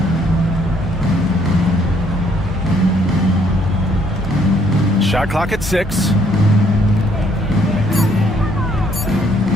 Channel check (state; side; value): normal; both; correlation 0.66